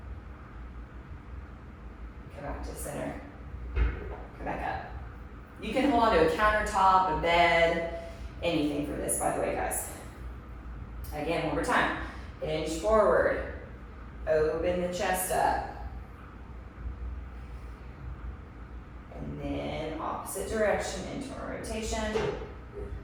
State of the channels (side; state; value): both; identical; correlation 1.00